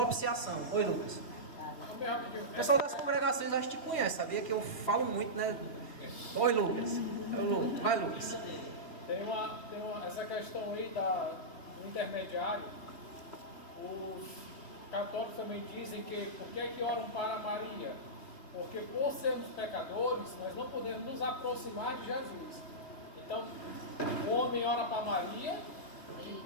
Oi, Lucas. O pessoal das congregações acho que te conhece, sabia que eu falo muito, né? Oi, Lucas. Vai, Lucas. Essa questão aí do intermediário. Os católicos também dizem que por que oram para Maria? Porque por sermos pecadores, nós não podemos nos aproximar de Jesus. Então, o homem ora para Maria, que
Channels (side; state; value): right; late; 3.1 ms